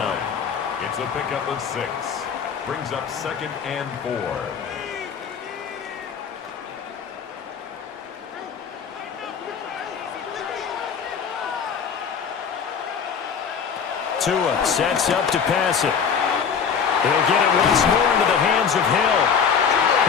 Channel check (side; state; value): right; quieter; 6.8 dB